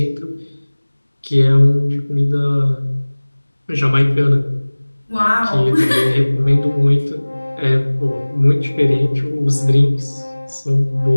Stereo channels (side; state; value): both; inverted; correlation -1.00